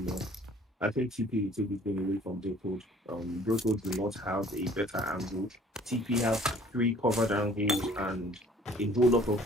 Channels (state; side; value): normal; both; correlation 0.54